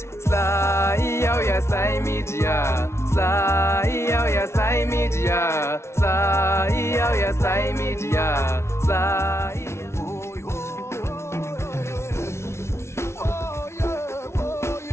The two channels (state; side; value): late; right; 0.13 ms